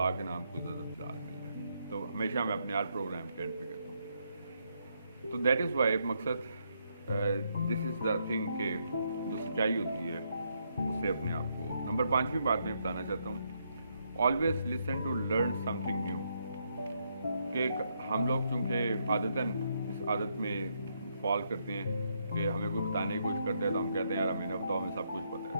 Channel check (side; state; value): both; inverted; correlation -0.77